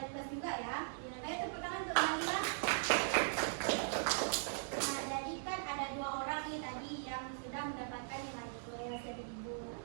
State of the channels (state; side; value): silent; left; digital silence